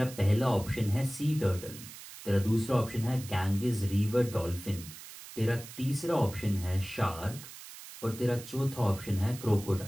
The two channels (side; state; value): right; noise; hiss, 15 dB below the sound